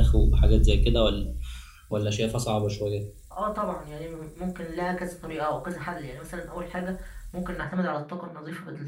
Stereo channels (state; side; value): identical; both; correlation 1.00